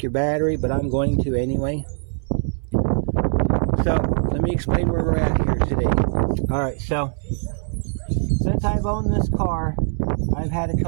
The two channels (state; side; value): silent; left; 64 dB below the other